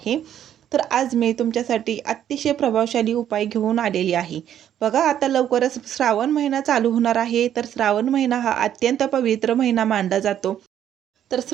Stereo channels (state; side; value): quieter; left; 10.4 dB